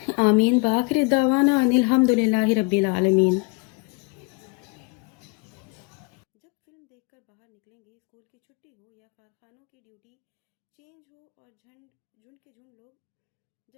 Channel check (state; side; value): quieter; right; 29.8 dB